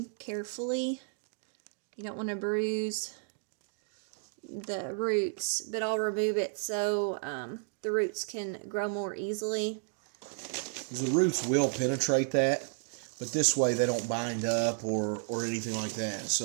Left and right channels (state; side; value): silent; left; digital silence